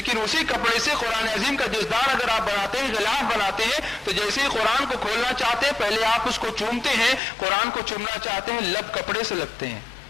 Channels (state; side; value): drops out; right; at 7.2 s